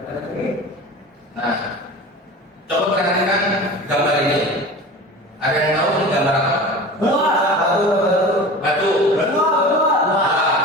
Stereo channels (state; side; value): normal; both; correlation 0.35